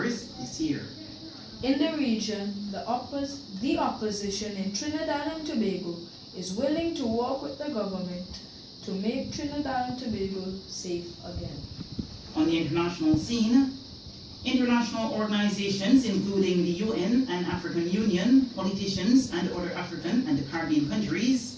this year. In the region, the opposition in Trinidad and Tobago is willing to work with the government to make Trinidad and Tobago safe again. On the international scene, international organizations including the UN and African Union, politicians and other African and Caribbean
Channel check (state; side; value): identical; both; correlation 1.00